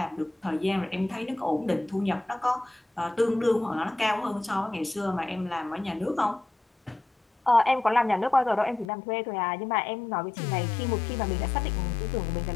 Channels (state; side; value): drops out; right; at 8.9 s